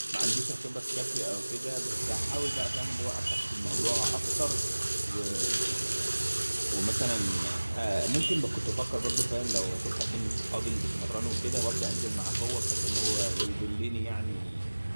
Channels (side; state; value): both; inverted; correlation -1.00